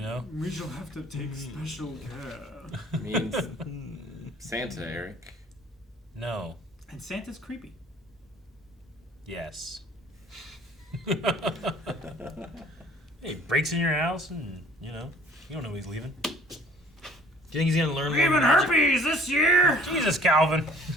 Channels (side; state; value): both; normal; correlation 0.54